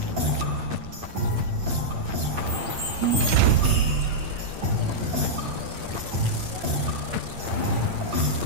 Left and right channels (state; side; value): late; left; 8.8 ms